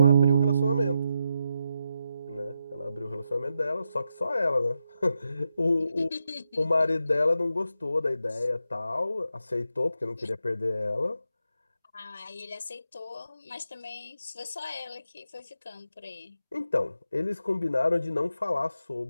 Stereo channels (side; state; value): both; inverted; correlation -0.85